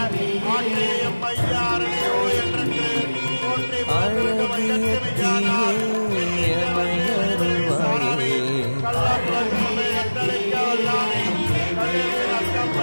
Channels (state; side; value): inverted; both; correlation -1.00